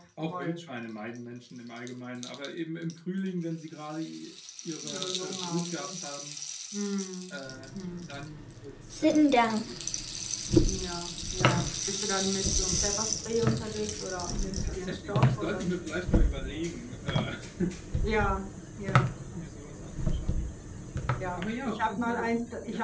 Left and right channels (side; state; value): both; identical; correlation 1.00